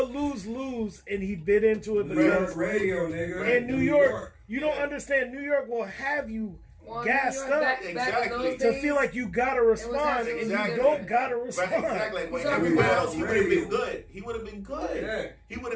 lose-lose, and he bit into it New York because radio, nigga. in New York, you don't understand. New York will have you Well, gassed New York, up back in Exactly. those to days, feel like you gotta respond, and Exactly. you don't gotta respond. Right, exactly. Like when So everywhere he else, was he would have radio. been good. He would have been good. Yeah. He would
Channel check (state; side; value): identical; both; correlation 1.00